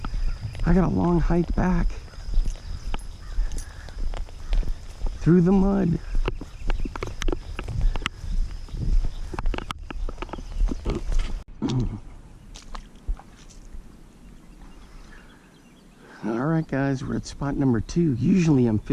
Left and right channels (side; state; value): both; identical; correlation 1.00